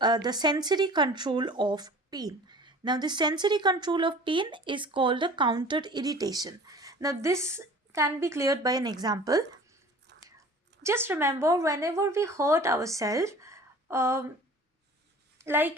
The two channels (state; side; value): normal; both; correlation 0.44